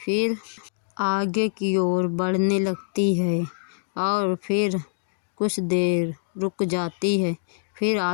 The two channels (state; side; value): silent; right; digital silence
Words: आगे की ओर बढ़ने लगती है और फिर कुछ देर रुक जाती है। फिर